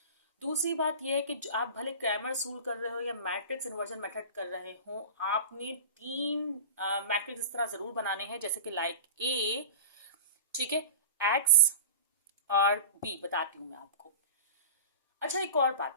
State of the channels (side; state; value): both; inverted; correlation -0.34